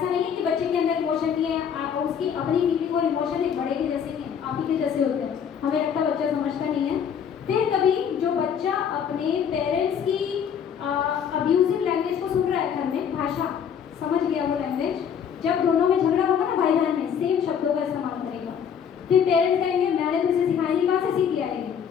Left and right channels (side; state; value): right; quieter; 7.8 dB